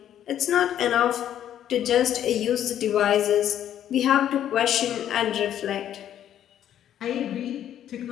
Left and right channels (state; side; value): quieter; right; 10.7 dB